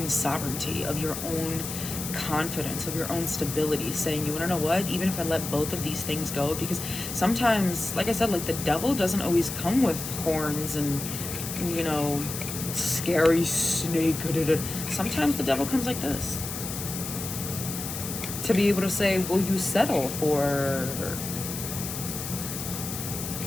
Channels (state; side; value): noise; left; hiss, 7 dB below the sound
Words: sovereignty, of your own confidence, of your own stability, saying, you want to know what, even if I let both of these things go, because sometimes, like I said, like the devil doesn't always come with horns and, you know, scary snake. Sometimes the devil comes like this, to be able to say, will you settle for